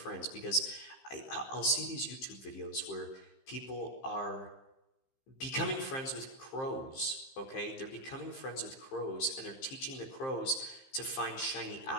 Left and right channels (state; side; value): late; right; 15 ms